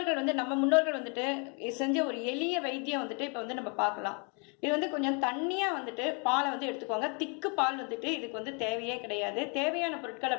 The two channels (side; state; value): right; quieter; 35.6 dB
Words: முன்னோர்கள் வந்துட்டு செஞ்ச ஒரு எளிய வைத்தியம் வந்துட்டு இப்போ வந்து நம்ம பார்க்கலாம். இது வந்து கொஞ்சம் தண்ணியாக வந்துட்டு பாலை வந்து எடுத்துக்கோங்க. திக்கு பால் வந்துட்டு இதுக்கு வந்து தேவையே கிடையாது. தேவையான பொருட்கள்